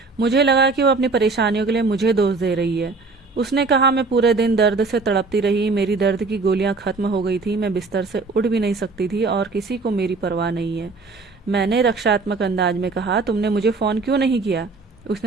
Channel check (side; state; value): left; quieter; 3.9 dB